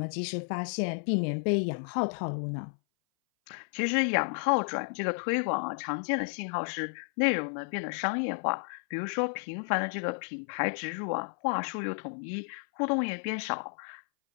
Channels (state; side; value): silent; right; 57 dB below the other